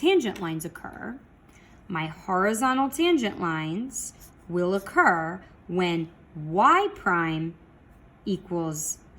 lines occur, my horizontal tangent lines will occur when y prime equals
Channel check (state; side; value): identical; both; correlation 1.00